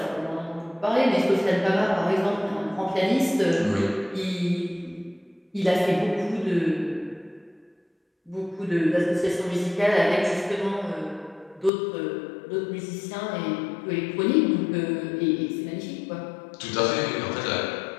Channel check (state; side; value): drops out; right; at 11.7 s